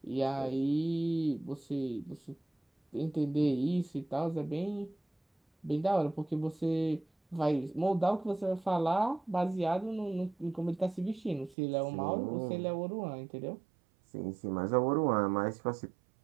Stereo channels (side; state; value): left; drops out; at 11.6 s